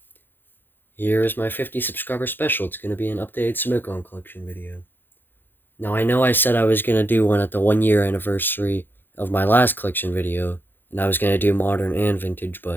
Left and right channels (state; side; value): late; right; 0.097 ms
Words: here is my 50 subscriber special. It's going to be an updated Smoke On collection video. Now, I know I said I was going to do one at the 1 year anniversary of my last collection video, and I was going to do modern and vintage,